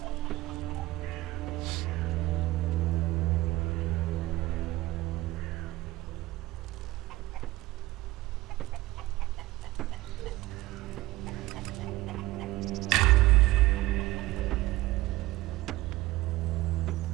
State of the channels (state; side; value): quieter; left; 18.1 dB